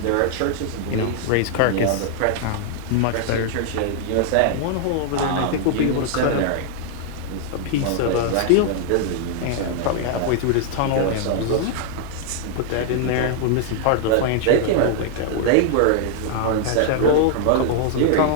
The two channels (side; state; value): both; different; correlation 0.00